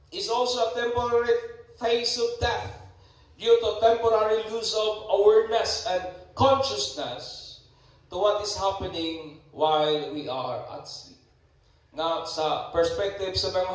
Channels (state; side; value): identical; both; correlation 1.00